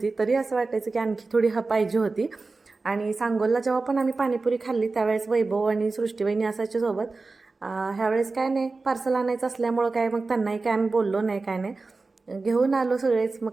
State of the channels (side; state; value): left; quieter; 3.8 dB